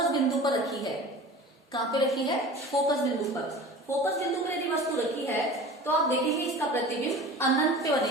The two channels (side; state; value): both; normal; correlation 0.38